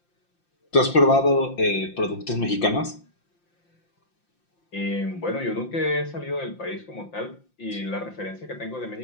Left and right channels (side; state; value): right; late; 5.8 ms